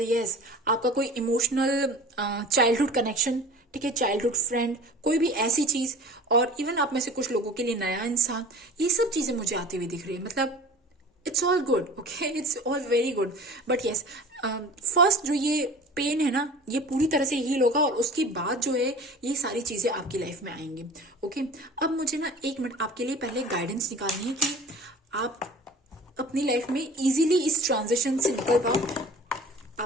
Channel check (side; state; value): both; normal; correlation 0.42